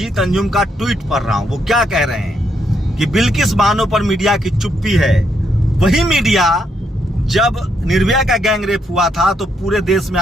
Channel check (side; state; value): both; normal; correlation 0.76